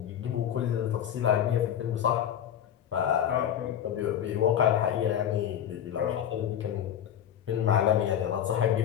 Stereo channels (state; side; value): quieter; right; 9.9 dB